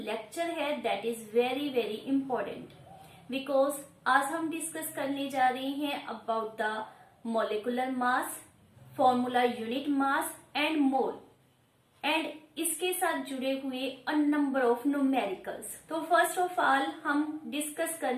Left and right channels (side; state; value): both; identical; correlation 1.00